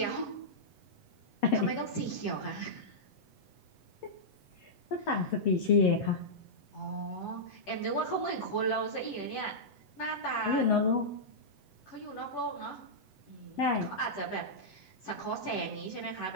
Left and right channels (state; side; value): late; right; 8.0 ms